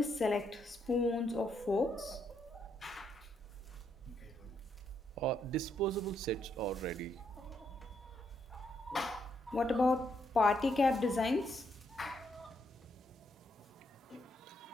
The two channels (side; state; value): both; normal; correlation 0.76